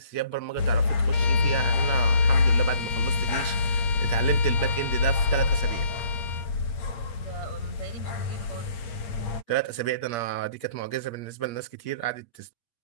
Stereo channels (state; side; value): late; right; 8.6 ms